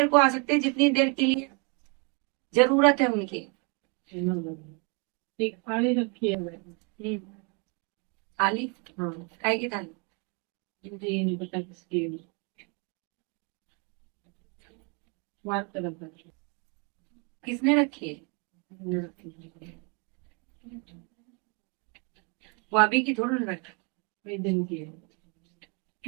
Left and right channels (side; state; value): left; quieter; 34.4 dB